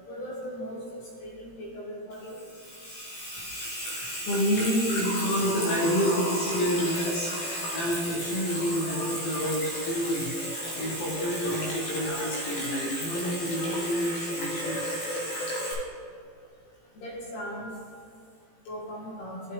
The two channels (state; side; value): late; right; 18 ms